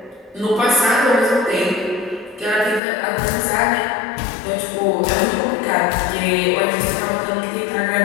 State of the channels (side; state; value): right; drops out; at 2.8 s